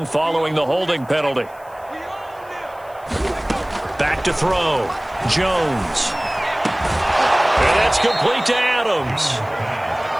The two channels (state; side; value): noise; left; hiss, 28 dB below the sound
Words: following the holding penalty. Back to throw. Jones. And that's complete to Adams.